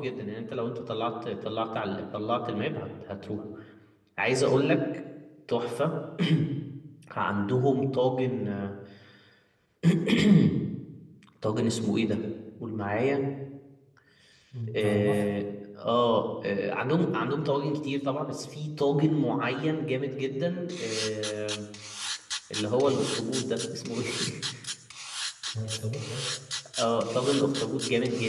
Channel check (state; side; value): identical; both; correlation 1.00